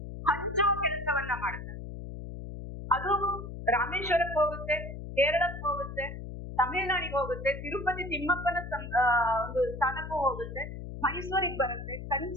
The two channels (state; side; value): noise; left; hum, 9 dB below the sound